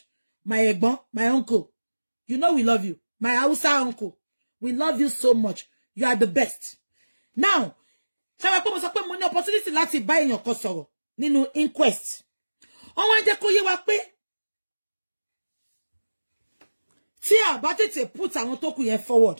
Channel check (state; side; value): inverted; both; correlation -1.00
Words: my ẹ̀gbọ́n my uncle you know we love you my Hausa uncle we love you so much you are the best now ṣé mo pé mo sọ pé mo ní opportunity láti bá èèyàn kan sọ̀rọ̀ nínú inquest wọ́n jẹ́ kó yé wa pé tí a bá tètè put àwọn tó kù yẹn forward